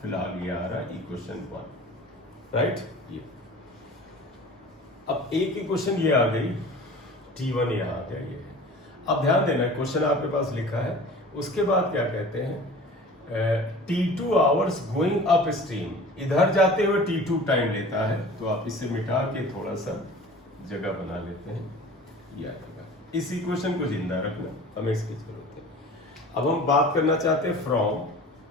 फिलहाल ये आ रहा इक्वेशन 1, राइट। ये अब अब एक इक्वेशन ये आ गई, T1 यहाँ आ गया ये। अब ध्यान देना, क्वेश्चन आपके पास लिखा है, उसके बाद क्या कहते हैं, T2 hours going up stream, इधर जाते हुए T2 टाइम लेता है। तो आप इसे मिटा के थोड़ा सा जगह बना लेते हैं, ये आएगा। इस इक्वेशन को जिंदा रखना, हमें इसकी जरूरत है। अब हम बात करना चाहते हैं from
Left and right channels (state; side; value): normal; both; correlation 0.41